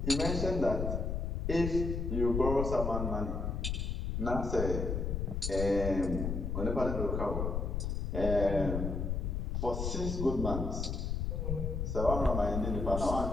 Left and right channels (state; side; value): noise; left; rumble, 1 dB below the sound